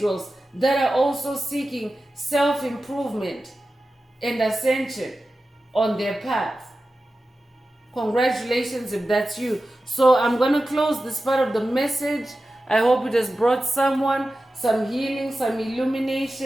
that are also seeking self-improvement and ascension on their path. Congratulations if that's you. So I'm going to close this part of the message. I hope it has brought someone some healing, some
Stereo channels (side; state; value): both; normal; correlation 0.94